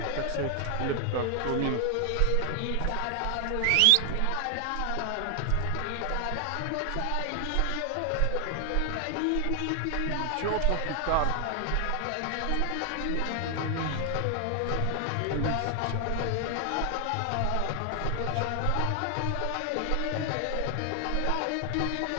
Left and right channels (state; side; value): different; both; correlation 0.00